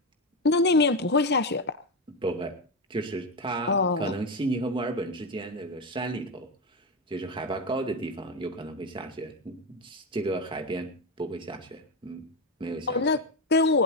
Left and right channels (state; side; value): normal; both; correlation 0.13